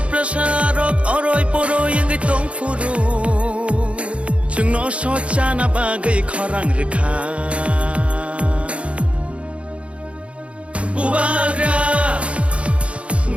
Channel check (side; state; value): left; late; 0.061 ms